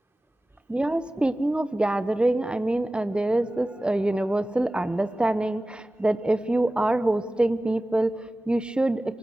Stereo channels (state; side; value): normal; both; correlation 0.96